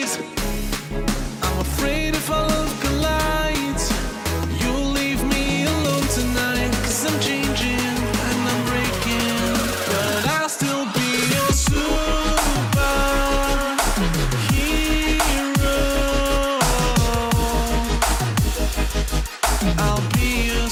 I'm afraid if our love collides, you'll leave me alone tonight. 'Cause I'm changing and I'm breaking, but I'll still be your superhero. I'll be your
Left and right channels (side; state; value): both; identical; correlation 1.00